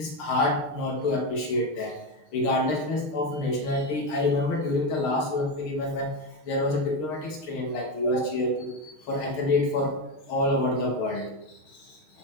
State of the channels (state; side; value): late; right; 6.5 ms